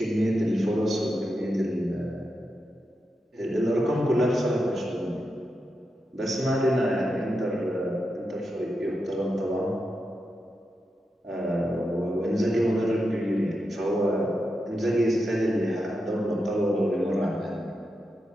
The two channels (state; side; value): normal; both; correlation 0.87